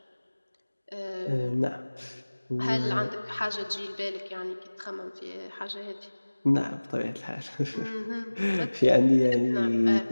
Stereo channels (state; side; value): inverted; both; correlation -1.00